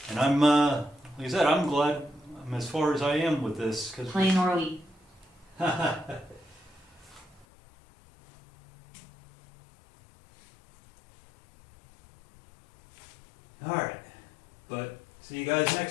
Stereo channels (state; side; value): drops out; right; at 7.5 s